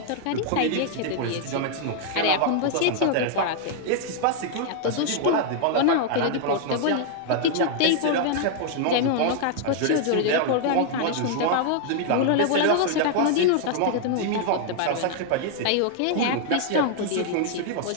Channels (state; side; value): different; both; correlation 0.00